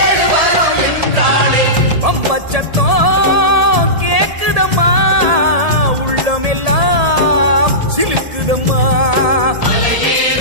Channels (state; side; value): late; left; 1.7 ms